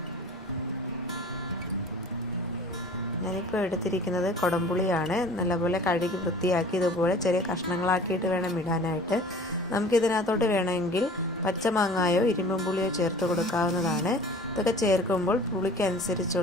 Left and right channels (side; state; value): both; normal; correlation 0.45